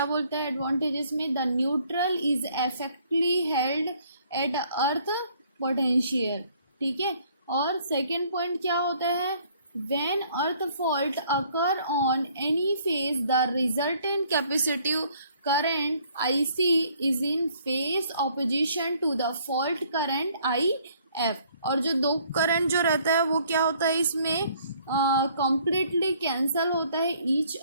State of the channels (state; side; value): inverted; both; correlation -0.62